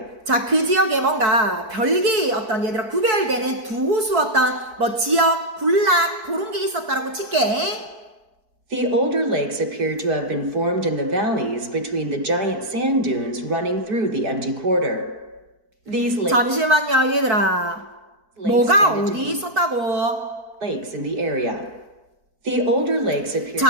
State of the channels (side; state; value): left; late; 4.5 ms